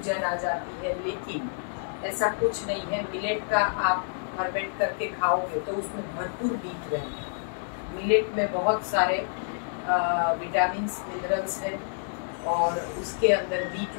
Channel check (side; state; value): right; silent; digital silence